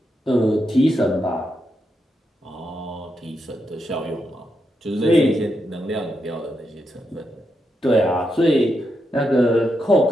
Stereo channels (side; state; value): both; normal; correlation 0.83